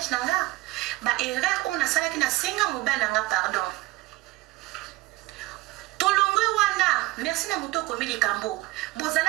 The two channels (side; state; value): left; quieter; 19.2 dB